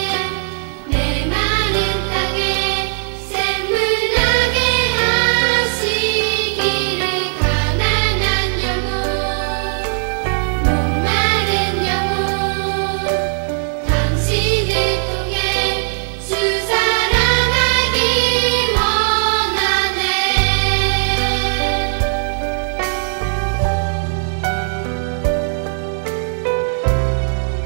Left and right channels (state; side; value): silent; left; 67 dB below the other